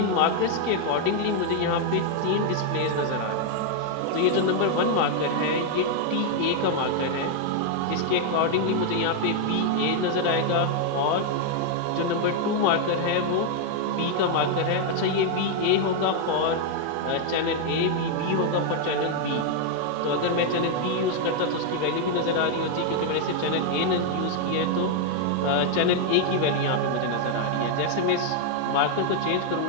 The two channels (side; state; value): both; different; correlation 0.00